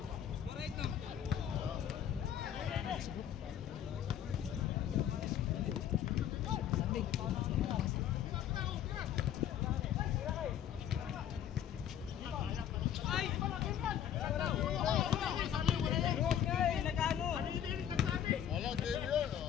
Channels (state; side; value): quieter; right; 10.0 dB